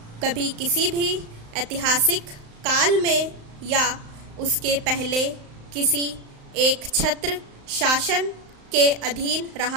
कभी किसी भी ऐतिहासिक काल में या उसके पहले किसी एक छत्र शासन के अधीन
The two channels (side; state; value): left; late; 35 ms